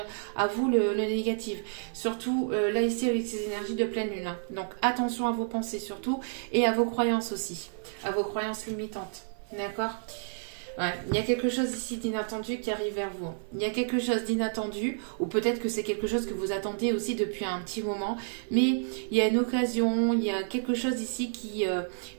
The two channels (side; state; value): left; silent; 58 dB below the other